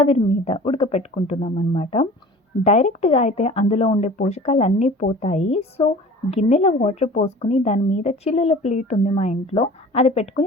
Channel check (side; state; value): both; normal; correlation 0.43